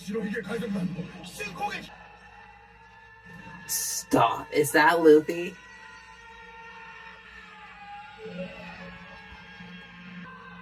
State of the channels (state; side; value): identical; both; correlation 1.00